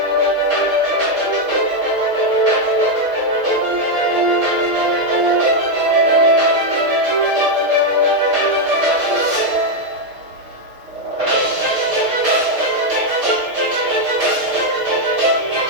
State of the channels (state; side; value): late; left; 6.5 ms